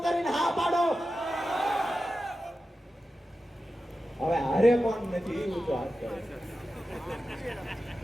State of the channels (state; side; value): normal; both; correlation 0.92